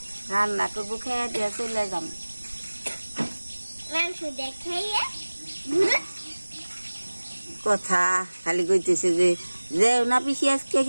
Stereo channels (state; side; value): inverted; both; correlation -1.00